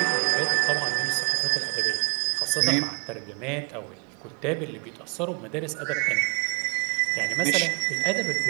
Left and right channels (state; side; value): quieter; left; 37.5 dB